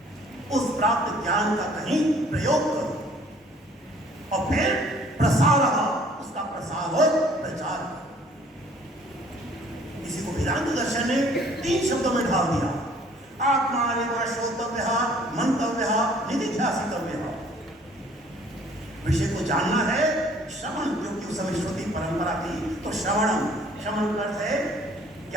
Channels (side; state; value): both; normal; correlation 0.57